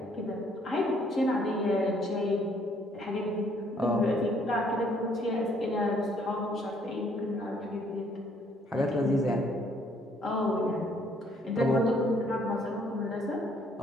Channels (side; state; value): both; normal; correlation 0.65